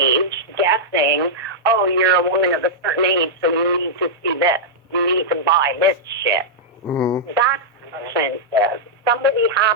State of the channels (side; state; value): both; normal; correlation -0.08